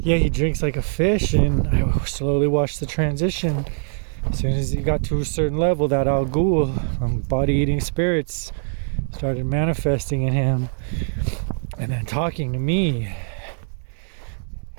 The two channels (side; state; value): left; silent; 63 dB below the other